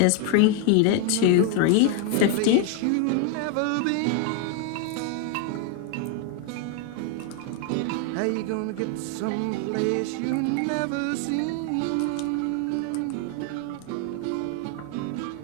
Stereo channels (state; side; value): different; both; correlation 0.01